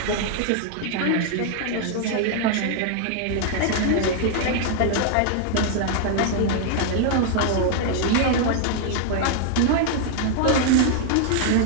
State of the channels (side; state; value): both; different; correlation 0.00